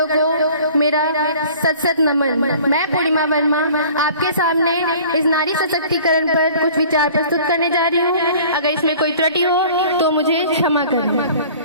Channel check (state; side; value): inverted; both; correlation -0.48